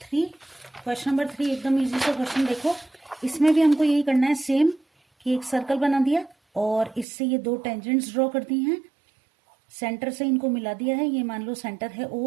3। क्वेश्चन नंबर 3 एकदम इजी सा क्वेश्चन। देखो इसमें भी हमको यही करना है सेम, कि एक सर्कल बना दिया और इससे ये दो टेंजेंट्स ड्रॉ कर दी हैं, सेंटर से इनको मिला दिया है। ये मान लो सेंटर है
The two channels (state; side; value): drops out; left; at 7.1 s